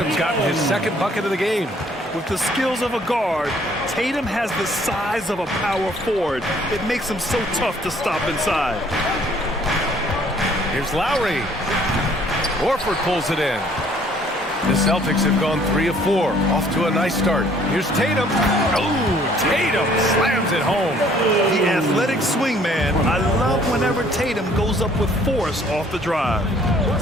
gotten his second bucket of the game. With the skills of a guard, Tatum has the size of a power forward. It makes him so tough to stop inside. Here's Lowry. Horford pulls it in. The Celtics have gone 3 of 4. Off to a nice start. Here's Tatum. Oh, Tatum slams it home. The athletic swing man. I love whenever Tatum goes up with force off the drive.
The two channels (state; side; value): normal; both; correlation 0.60